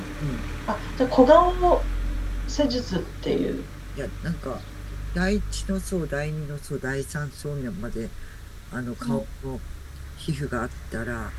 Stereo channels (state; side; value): identical; both; correlation 1.00